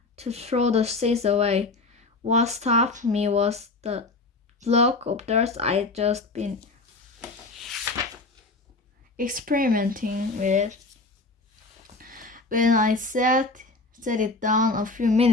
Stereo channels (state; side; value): quieter; right; 3.4 dB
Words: to throw the seeds away. What stopped me was the block of dirt I'd just been experimenting with. When I set it down a few